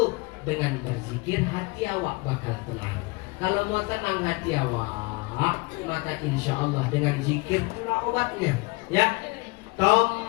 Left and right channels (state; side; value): quieter; right; 26.0 dB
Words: Dengan berzikir hati awak bakal tenang. Kalau mau tenang hati awak, maka insya Allah dengan zikir itulah obatnya. Ya,